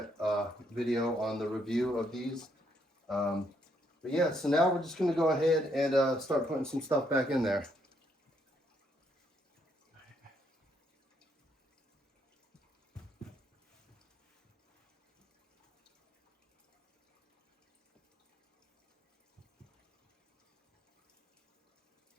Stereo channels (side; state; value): both; normal; correlation 0.73